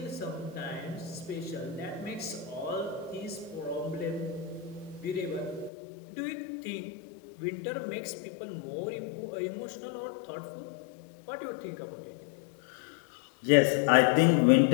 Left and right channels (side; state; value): right; drops out; at 5.7 s